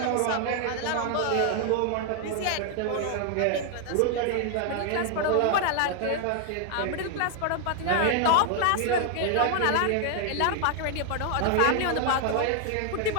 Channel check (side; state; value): both; different; correlation 0.00